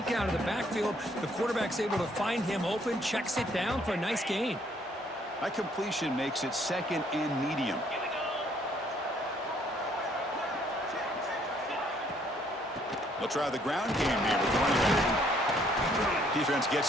out of the backfield. The quarterback's able to find him open, checks it down for a nice gain. That completion makes it 2nd and medium. They'll try the ground game here with the running back. Defense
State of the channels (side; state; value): both; normal; correlation 0.65